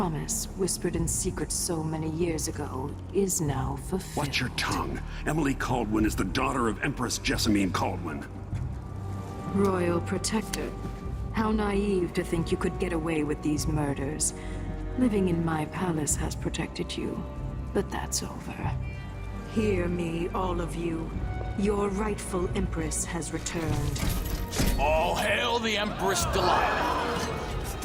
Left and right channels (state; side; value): identical; both; correlation 1.00